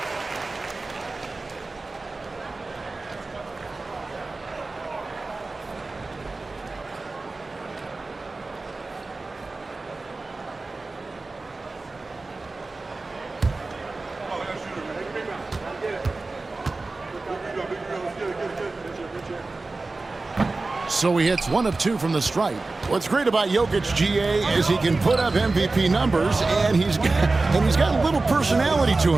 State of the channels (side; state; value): left; quieter; 3.5 dB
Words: So he hits 1 of 2 from the stripe. What's great about Jokic, GA, is he can put up MVP numbers, and he's got a little personality to